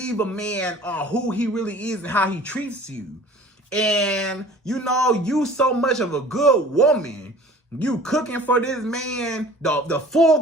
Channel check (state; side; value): normal; both; correlation 0.46